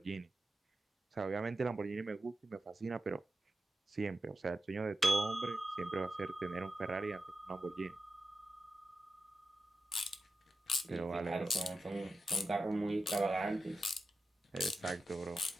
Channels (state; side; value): normal; both; correlation 0.91